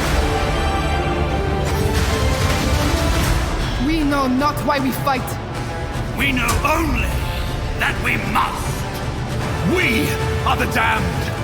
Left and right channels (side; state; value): both; identical; correlation 1.00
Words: Not why we fight. We know only that we must. We are the damned.